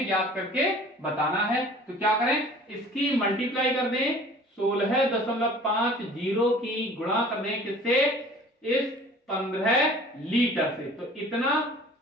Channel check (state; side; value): normal; both; correlation 0.48